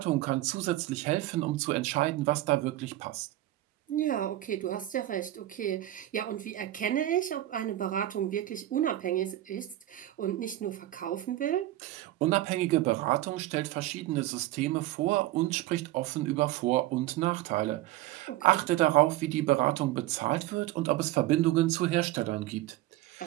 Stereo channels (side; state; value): left; quieter; 15.2 dB